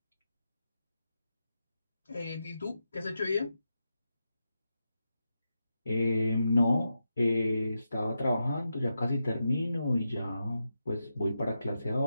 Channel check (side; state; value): both; inverted; correlation -0.87